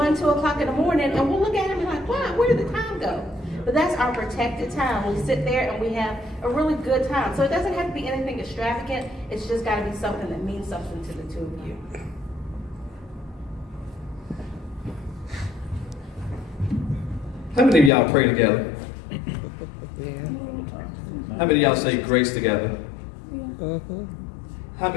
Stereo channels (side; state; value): right; drops out; at 17.9 s